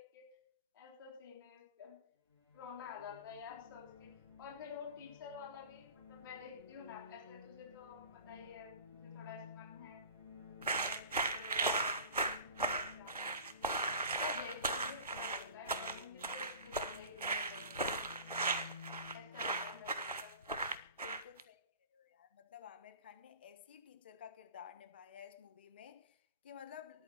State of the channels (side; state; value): both; inverted; correlation -0.40